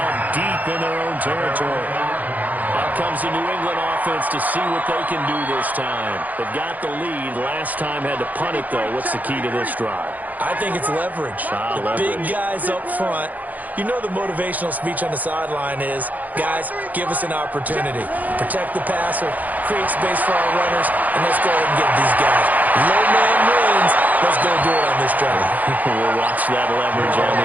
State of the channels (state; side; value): late; left; 0.080 ms